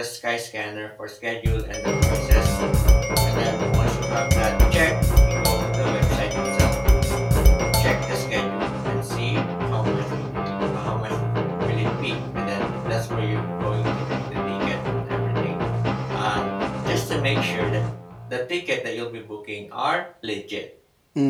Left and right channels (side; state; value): both; identical; correlation 1.00